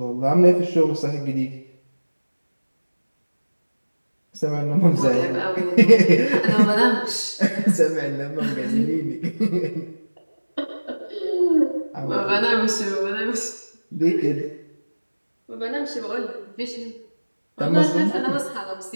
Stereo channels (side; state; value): both; inverted; correlation -1.00